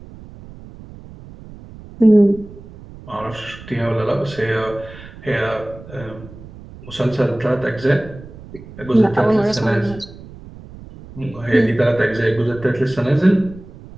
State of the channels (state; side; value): noise; right; rumble, 17 dB below the sound